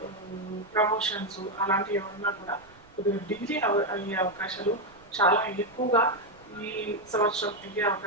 ప్రమోషన్స్ అలాంటివి ఏమన్నా కూడా కొద్దిగా డిగ్రీ అయ్యే అవకాశాలు చాలా ఎక్కువగా ఈ సంవత్సరం అయ్యే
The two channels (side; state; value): right; noise; rumble, 27 dB below the sound